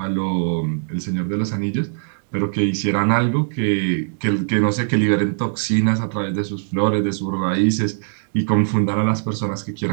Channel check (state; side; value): silent; left; digital silence